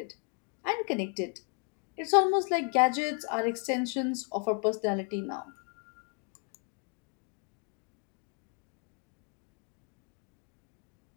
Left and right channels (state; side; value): quieter; right; 39.0 dB